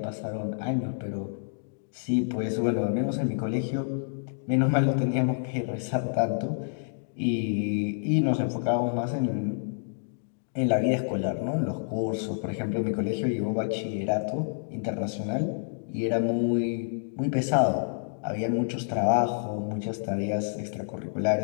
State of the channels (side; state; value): right; silent; digital silence